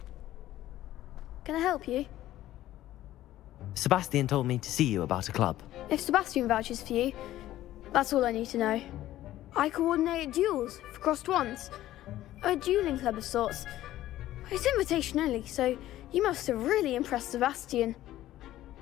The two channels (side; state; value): right; quieter; 14.2 dB